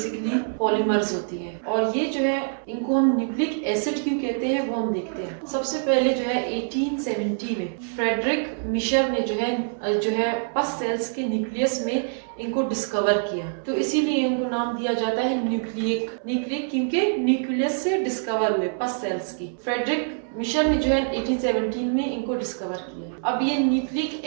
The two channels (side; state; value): left; silent; 62 dB below the other